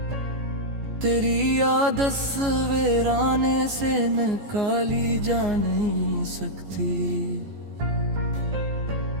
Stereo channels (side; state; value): left; late; 14 ms